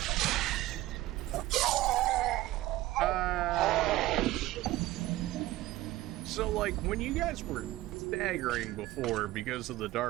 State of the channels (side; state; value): left; quieter; 16.8 dB